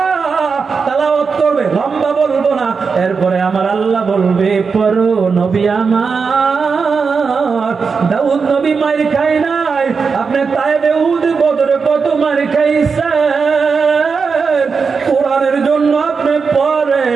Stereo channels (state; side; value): quieter; left; 5.3 dB